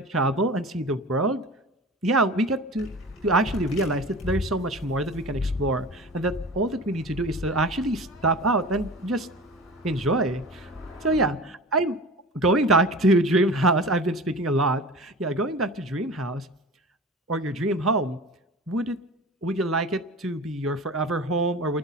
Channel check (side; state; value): both; normal; correlation 0.36